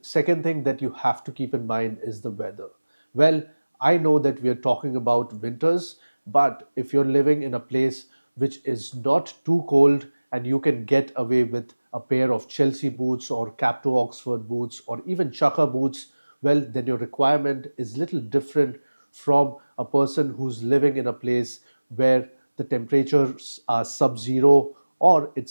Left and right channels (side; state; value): both; inverted; correlation -1.00